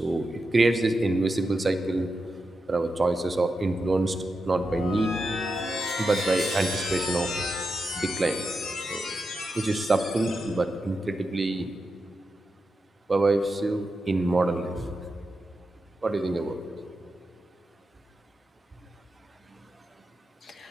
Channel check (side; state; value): both; normal; correlation 0.88